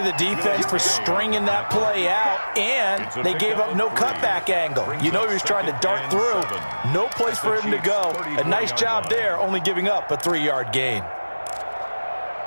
defense for stringing that play out, and they gave up no cutback angle. You know he was trying to dart through. No place for him to go. A nice job there, only giving up a 3-yard gain.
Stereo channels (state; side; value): inverted; both; correlation -1.00